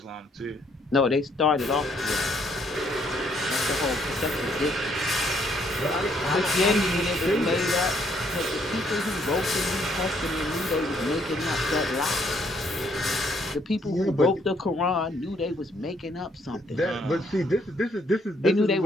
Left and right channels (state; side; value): normal; both; correlation 0.69